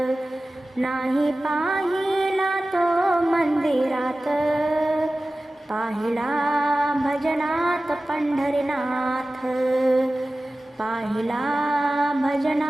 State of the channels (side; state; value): both; normal; correlation 0.96